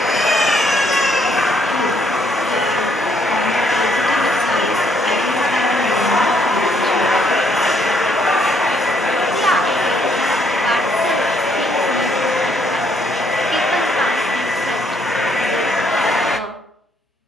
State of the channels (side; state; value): both; normal; correlation 0.69